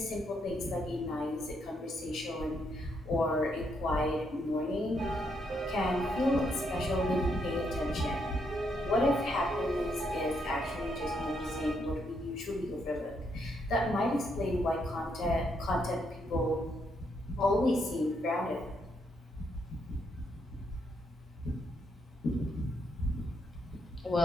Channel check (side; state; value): both; normal; correlation 0.76